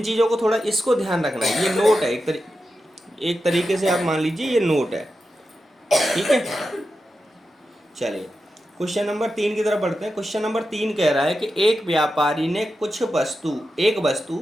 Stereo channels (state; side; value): normal; both; correlation 0.90